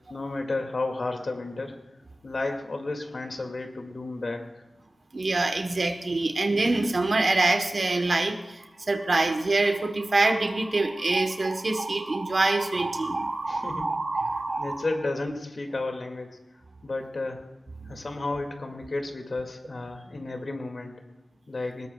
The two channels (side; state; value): both; normal; correlation 0.96